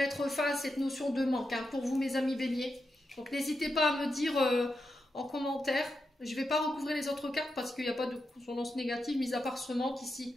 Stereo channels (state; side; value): normal; both; correlation 0.87